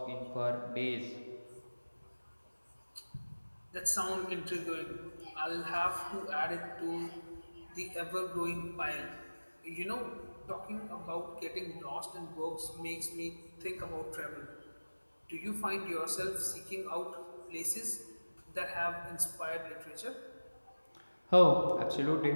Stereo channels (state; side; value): inverted; both; correlation -1.00